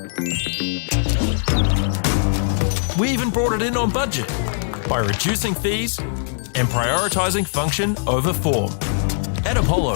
We even brought it in on budget by reducing fees and prioritising function over form. At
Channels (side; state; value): right; silent; 57 dB below the other